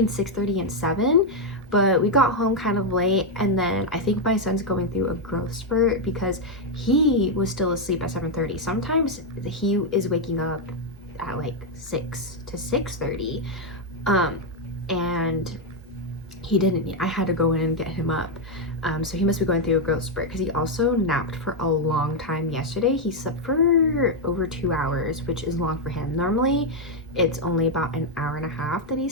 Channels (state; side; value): normal; both; correlation 0.01